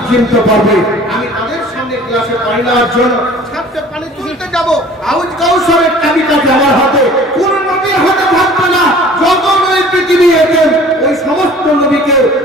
চিনতে পারবে। আমি তাদের সামনে গ্লাসে পানি নেওয়ার জন্য ছাদে পানি তুলতে যাব, আউজ কাউসারের চাবিটা আমার হাতে, কোন নবীর হাতে থাকবে না। যত নবী পৃথিবী এলেন ওই সমস্ত নবীকে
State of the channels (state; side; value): normal; both; correlation 0.48